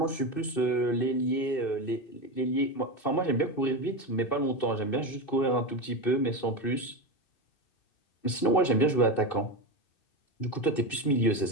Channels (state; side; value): late; right; 2.6 ms